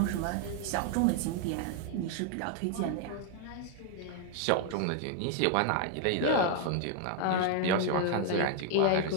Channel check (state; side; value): different; both; correlation 0.00